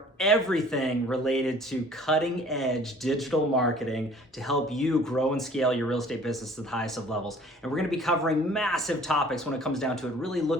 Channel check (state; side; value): normal; both; correlation 0.51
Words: everything related to cutting edge digital marketing to help you grow and scale your real estate business to the highest of levels. And we're going to be covering massive topics when it comes down to it, really